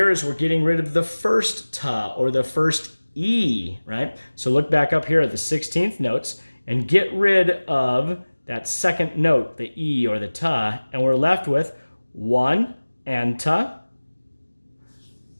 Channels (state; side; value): inverted; both; correlation -1.00